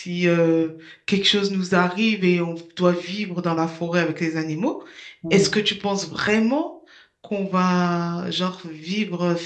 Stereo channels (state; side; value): identical; both; correlation 1.00